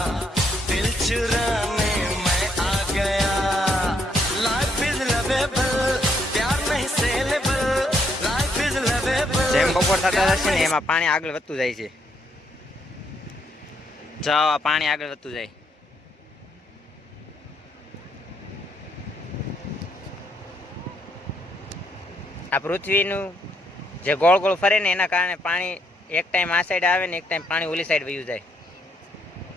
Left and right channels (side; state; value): both; normal; correlation 0.73